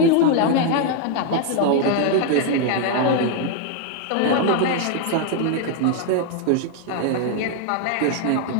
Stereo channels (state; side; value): different; both; correlation 0.00